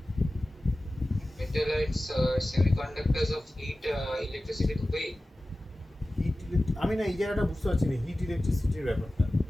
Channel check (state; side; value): normal; both; correlation 0.96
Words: Metalloids semiconductors of heat electricity তো পাই। হিট, আমি না এই জায়গাটা বুঝতে পারছি না হিট ইলেকট্রিসিটির ব্যাপারটা।